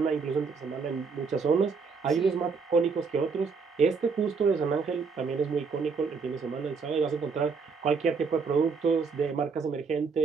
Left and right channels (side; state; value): left; quieter; 5.1 dB